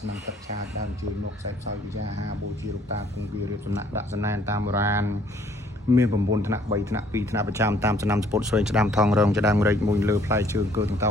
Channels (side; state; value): both; normal; correlation 0.61